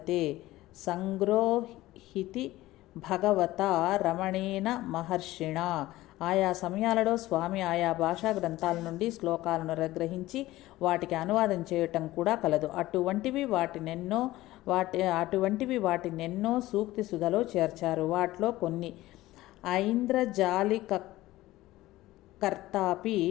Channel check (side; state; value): right; quieter; 17.0 dB